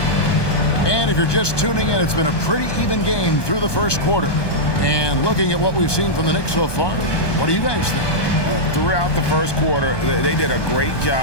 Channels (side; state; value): right; late; 1.2 ms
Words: And if you're just tuning in, it's been a pretty even game through the first quarter. And looking at what we've seen from the Knicks so far, what do you guys think? Throughout the first quarter, they did a great